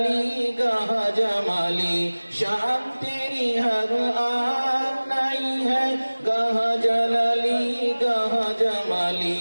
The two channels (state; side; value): inverted; both; correlation -1.00